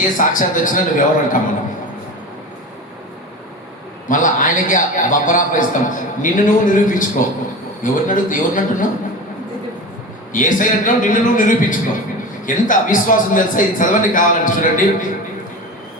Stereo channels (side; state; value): both; normal; correlation 0.29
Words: సాక్షాత్ వచ్చినా నువ్వు ఎవరు అంటాం మనం. మళ్ళీ ఆయనకి బబ్బరాప ఇస్తాం. నిన్ను నువ్వు నిరూపించుకో. ఎవరిని అంటున్నావు? ఏసయ్య అంటున్నావు, నిన్ను నువ్వు నిరూపించుకో. ఎంత అవిశ్వాసం తెలుసా? ఇది చదవండి కావాలంటే చూడండి.